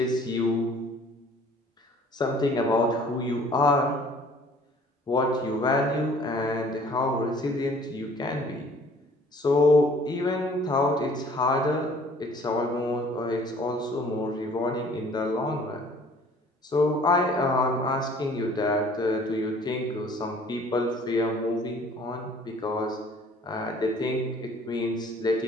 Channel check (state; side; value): normal; both; correlation 0.54